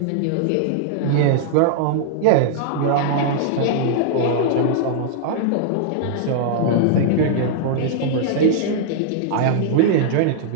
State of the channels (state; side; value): different; both; correlation -0.01